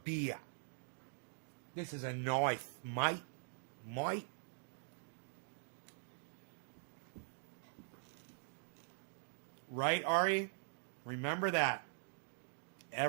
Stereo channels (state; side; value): silent; left; digital silence